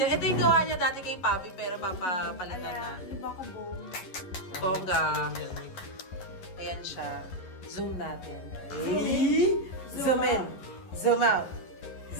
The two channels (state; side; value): late; right; 11 ms